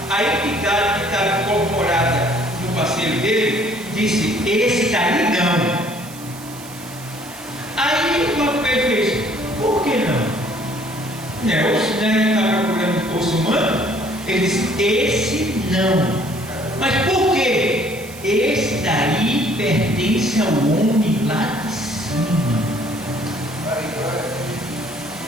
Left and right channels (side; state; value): right; noise; hiss, 17 dB below the sound